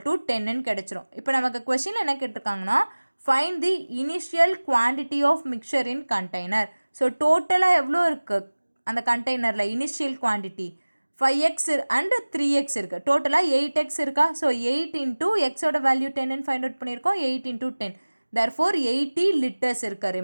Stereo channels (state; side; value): inverted; both; correlation -1.00